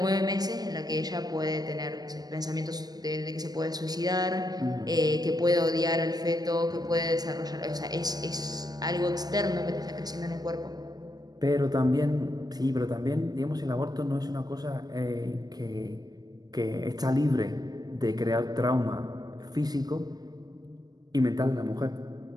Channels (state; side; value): late; left; 0.19 ms